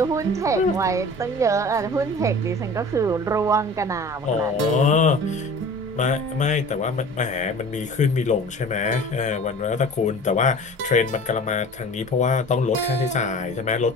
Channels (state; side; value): normal; both; correlation 0.41